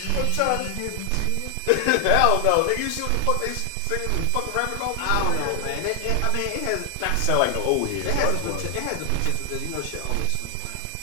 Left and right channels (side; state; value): both; different; correlation 0.00